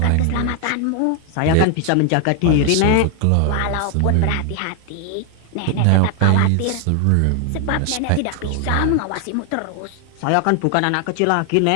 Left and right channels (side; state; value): both; different; correlation 0.00